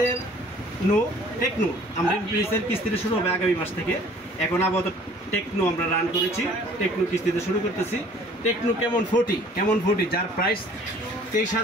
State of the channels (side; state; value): both; normal; correlation 0.53